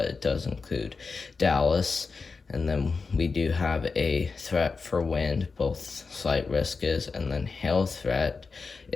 it does include Dallas. And then we do have a threat for wind, both slight risk is, and then hail threat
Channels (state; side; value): quieter; right; 4.6 dB